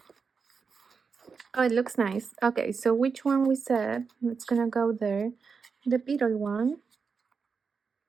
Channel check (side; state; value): left; quieter; 5.4 dB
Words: Oh, it looks nice. Okay, so which one we said? It's gonna go there. The beetle one.